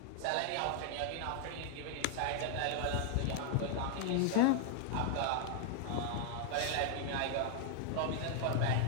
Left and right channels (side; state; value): both; different; correlation 0.00